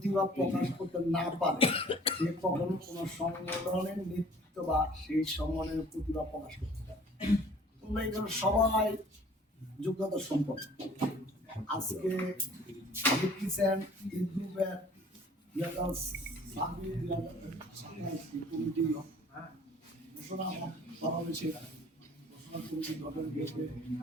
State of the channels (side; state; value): both; normal; correlation 0.52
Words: প্রকাশ করতে না পারে, সে কখনো কোনো সংগঠনের নেতৃত্ব বা সেই সংগঠনের প্রতিভা প্রকাশ করতে পারে। তোমরা এখানে সবাই যোগ্যতা সম্পন্ন। আজকে দেখতেছেন এই গ্রুপের কমিটি ঘোষণা করা হয়েছে। ঘোষণা কমিটি গঠন হয়েছে